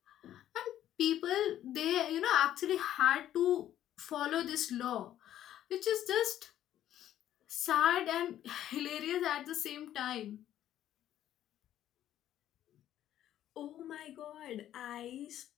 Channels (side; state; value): right; quieter; 11.9 dB